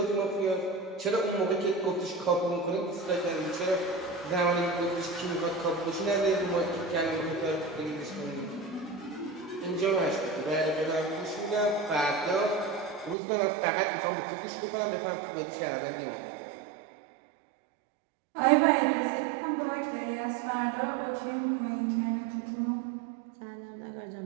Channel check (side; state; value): left; drops out; at 13.2 s